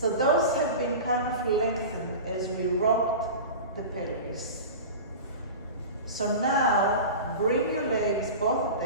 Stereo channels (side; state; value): both; inverted; correlation -0.31